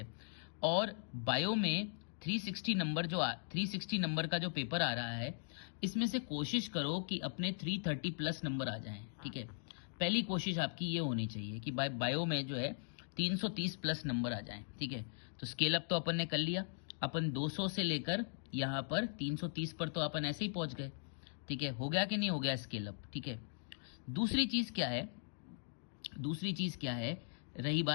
और बायो में 360 नंबर का जो पेपर आ रहा है, इसमें से कोशिश करो कि अपने 330 प्लस नंबर आ जाएं। ठीक है, पहली कोशिश आपकी ये होनी चाहिए कि बायो में जो है 330 प्लस नंबर आ जाएं। ठीक है, तो स्केल अप तो अपन ने कर लिया, अपन 200 से लेकर यहाँ पर 330 पर तो अपन ऐसे ही पहुंच गए। ठीक है, हो गया कि नहीं हो गया स्केल अप? ठीक है, दूसरी चीज क्या है? रही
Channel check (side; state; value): right; silent; digital silence